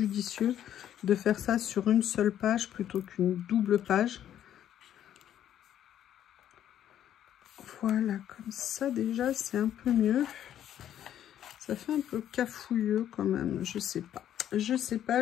de faire ça sur une seule page plutôt qu'une double page. Voilà, comme ça déjà, c'est un peu mieux. Ça fait un peu cafouilleux quand même, je sais pas. Je sais pas,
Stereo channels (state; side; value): quieter; right; 10.7 dB